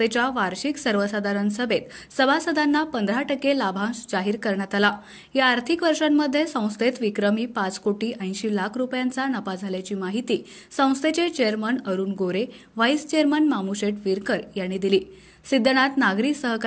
वार्षिक सर्वसाधारण सभेत सभासदांना 15% लाभांश जाहीर करण्यात आला। या आर्थिक वर्षांमध्ये संस्थेत विक्रमी 5,80,00,000 रुपयांचा नफा झाल्याची माहिती संस्थेचे चेअरमन अरुण गोरे, व्हाईस चेअरमन मामुशेठ विरकर यांनी दिली। सिद्धनाथ नागरी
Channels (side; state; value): both; identical; correlation 1.00